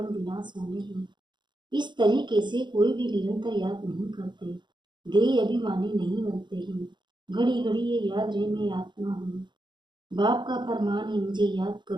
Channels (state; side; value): late; left; 0.22 ms